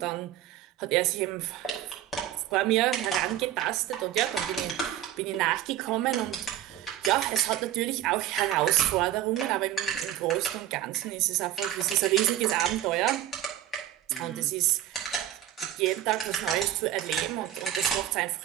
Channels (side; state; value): left; quieter; 12.1 dB